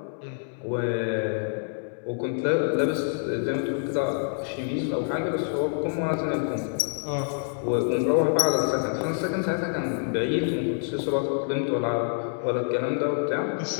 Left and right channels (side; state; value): right; silent; digital silence